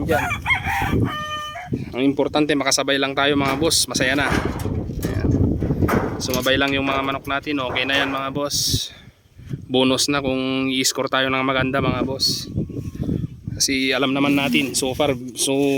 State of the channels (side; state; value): both; identical; correlation 1.00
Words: Ang importante makasabay lang tayo mga boss, masaya na. Ayan. Sumabay lang yung mga manok natin, okay na yan mga boss. Bonus na kung i-score tayo ng maganda mga boss. Kasi alam naman natin so far, so